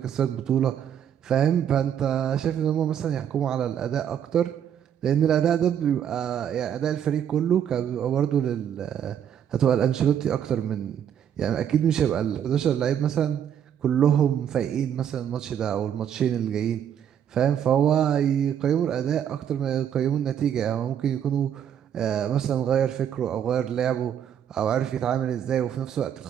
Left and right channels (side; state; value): left; quieter; 9.2 dB